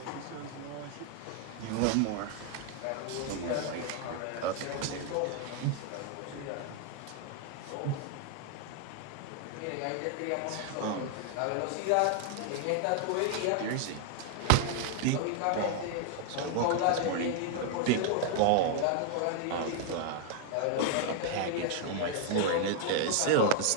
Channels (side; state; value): both; different; correlation 0.00